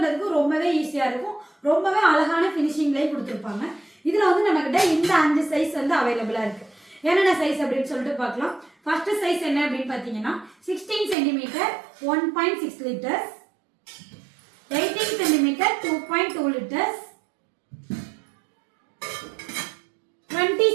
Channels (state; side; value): drops out; left; at 11.2 s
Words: ரொம்பவே ஈஸியா இருக்கும். ரொம்பவே அழகான ஃபினிஷிங்லயும் கொடுத்துருப்பாங்க. இதுல வந்து நம்ம கிட்ட இந்த 5 சைஸ் வந்து அவைலபிளா இருக்கு. என்னென்ன சைஸ் அப்படின்னு சொல்லிட்டு பார்க்கலாம். ஃபர்ஸ்ட் சைஸ் என்ன அப்படின்னு பாத்தீங்கன்னா 16 centimetre 1.6 litres, 18 centimetre 2.2 litres, 20